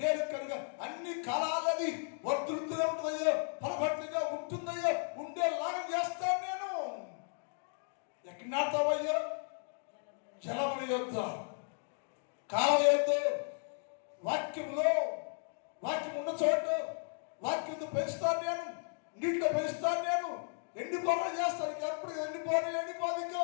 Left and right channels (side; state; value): right; silent; 54 dB below the other